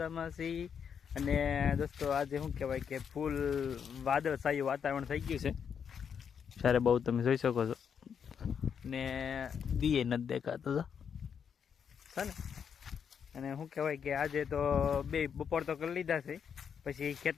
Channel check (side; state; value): right; quieter; 7.3 dB